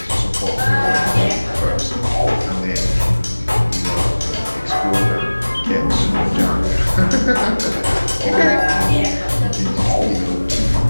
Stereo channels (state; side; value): inverted; both; correlation -1.00